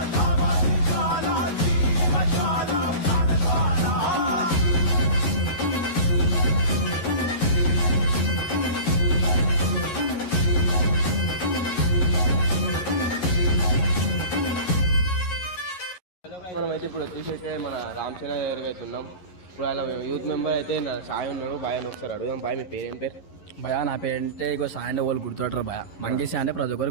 దావాగ్ని జ్వాల జీవ జ్వాల ప్రాణ జ్వాల మనమైతే ఇప్పుడు వచ్చేసి మన రామచంద్ర దగ్గరికి అయితే ఉన్నాం. ఇప్పుడు అలా యూత్ మెంబర్ అయితే నా సాయి ఉన్నాడు. బాయ్ అని ఒకసారి అడుగుదాం. బాయ్ మీ పేరు ఏం పేరు? భయ నా పేరంటే ఇగో సాయి అంటే వాళ్ళు గుర్తుపడతారు భయ. మంకీ సాయి అంటే ప్రతి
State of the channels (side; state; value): right; late; 11 ms